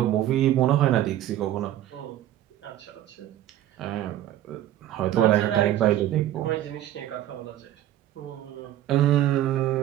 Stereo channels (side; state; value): left; quieter; 12.8 dB